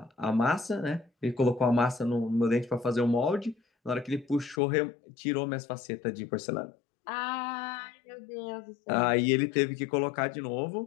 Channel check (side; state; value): right; drops out; at 4.6 s